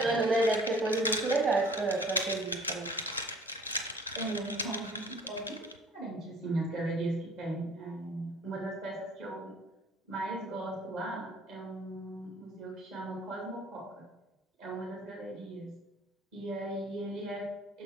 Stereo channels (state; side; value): normal; both; correlation 0.52